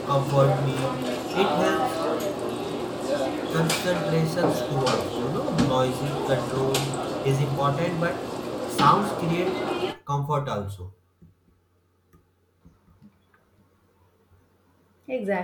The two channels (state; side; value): identical; both; correlation 1.00